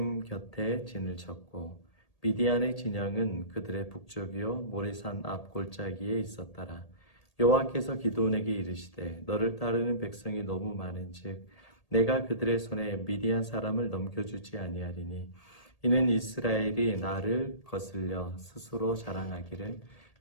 곁에 진을 쳤고 미디안의 진영은 그들의 북쪽이요 모레산 앞 골짜기에 있었더라. 여호와께서 기드온에게 이르시되 너를 따르는 백성이 너무 많은즉 내가 그들의 손에 미디안 사람을 넘겨주지 아니하리니 이는 이스라엘이 나를 거슬려 스스로 자랑하기를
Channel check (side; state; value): right; late; 1.8 ms